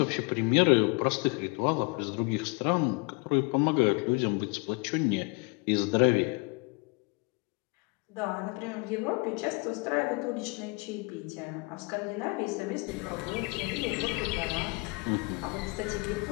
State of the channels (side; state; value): right; quieter; 29.7 dB